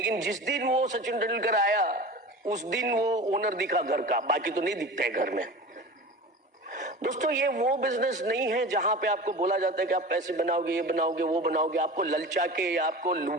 जिस दिन वो सचिन तेंदुलकर आया उस दिन वो ओनर दिखा घर का, बाकी तो नहीं दिखता है घर में। दोस्तों, ये वो बिजनेस नहीं है जहां पे आपको बोला जाता है कि आप पैसे बनाओगे, ये बनाओगे, वो बनाओगे। आपको ललचा के या आपको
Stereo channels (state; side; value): normal; both; correlation 0.34